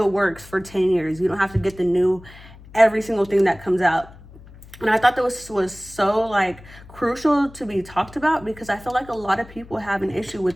works for 10 years. You don't have to get the new every single thing that comes out. And I thought that was so like crucial to be talked about because I feel like a lot of people have an issue with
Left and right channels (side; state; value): left; noise; hum, 20 dB below the sound